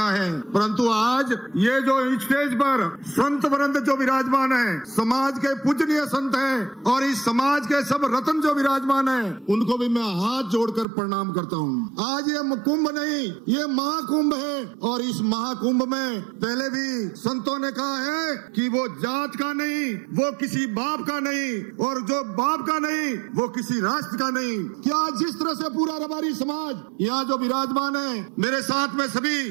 है। परंतु आज ये जो स्टेज पर संत वृंद जो विराजमान है, समाज के पूजनीय संत हैं, और इस समाज के सब रत्न जो विराजमान है, उनको भी मैं हाथ जोड़कर प्रणाम करता हूँ। आज ये कुंभ नहीं, ये महाकुंभ है, और इस महाकुंभ में पहले भी संतों ने कहा है कि वो जात का नहीं, वो किसी बाप का नहीं, और जो बाप का नहीं वो किसी राष्ट्र का नहीं। क्या जिस तरह से पूरा रबारी समाज यहाँ जो विराजमान है, मेरे साथ में सभी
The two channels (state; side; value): drops out; left; at 10.9 s